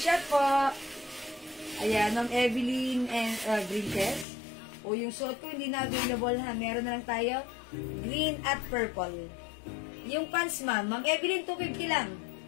po. Ayan, Ma'am Evelyn and Green. O, yung suot ko hindi na available ha. Meron na lang tayo. Green at purple. Yung pants, ma'am. Ma'am Evelyn, 250 lang.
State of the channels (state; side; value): drops out; right; at 4.2 s